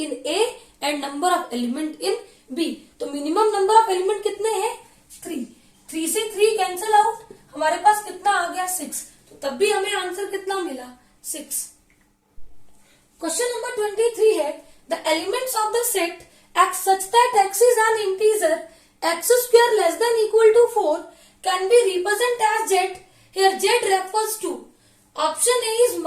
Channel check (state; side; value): identical; both; correlation 1.00